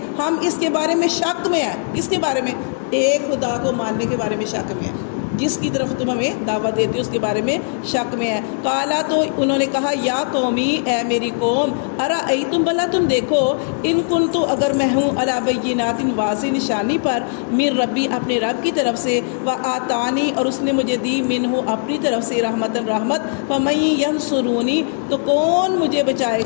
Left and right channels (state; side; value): silent; right; digital silence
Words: ہم اس کے بارے میں شک میں ہیں۔ اس کے بارے میں، ایک خدا کو ماننے کے بارے میں شک میں ہیں، جس کی طرف تم ہمیں دعوت دیتے ہو اس کے بارے میں شک میں ہے۔ قالا، تو انہوں نے کہا، یا قومی، اے میری قوم، ارأیتم، بھلا تم دیکھو، ان کنت، اگر میں ہوں، علی بینات، واضح نشانی پر، من ربی، اپنے رب کی طرف سے، وآتانی، اور اس نے مجھے دی، منہ، اپنی طرف سے، رحمتاً، رحمت، فمن ینصرونی، تو کون مجھے بچائے